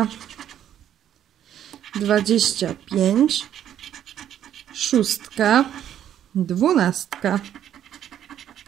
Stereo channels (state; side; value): quieter; left; 10.5 dB